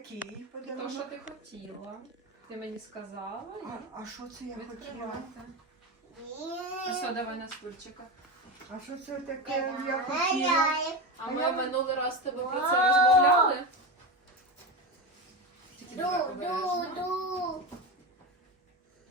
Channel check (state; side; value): normal; both; correlation 0.19